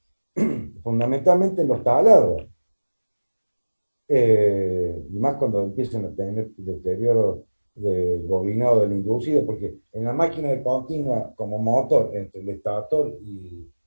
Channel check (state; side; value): inverted; both; correlation -1.00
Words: fundamentalmente en los taladros. Y más cuando empiezan a tener deterioro del bobinado del inducido, porque en la máquina de continua, como motor, entre el estator y